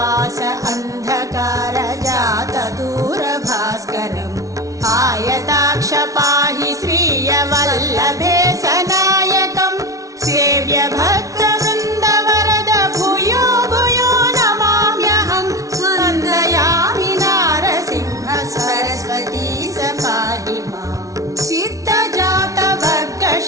అంధకార జాత దూర భాస్కరం ఆయతాక్ష పాహి శ్రీయ వల్లభే సనాయకం సేవ్య భక్త వృంద వరద భూయో భూయో నమామ్యహం వందయామి నారసింహ సరస్వతీ సపాహి మాం సిద్ధ జాత వర్గ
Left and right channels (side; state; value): left; late; 0.17 ms